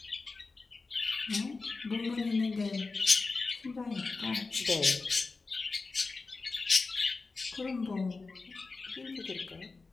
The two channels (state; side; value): quieter; right; 4.0 dB